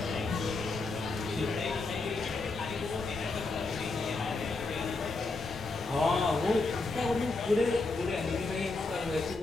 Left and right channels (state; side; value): quieter; right; 3.5 dB